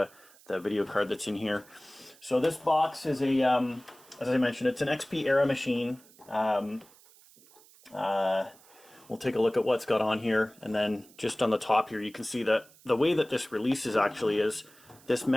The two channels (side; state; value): right; noise; hiss, 26 dB below the sound